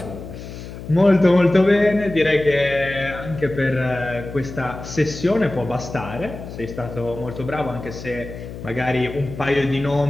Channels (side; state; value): left; noise; hum, 12 dB below the sound